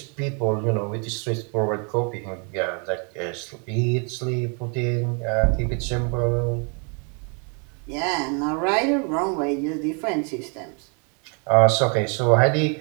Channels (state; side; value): quieter; left; 37.1 dB